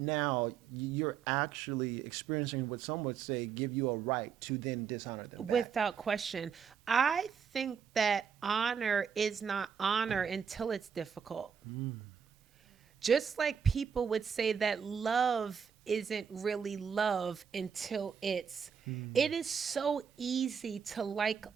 now you're actually experiencing what some would say give you a right to then dishonor them back? Without question. I think that honor is not honor until it's difficult. Just like people would say that love isn't really love until it is so easy to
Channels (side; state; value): left; quieter; 7.0 dB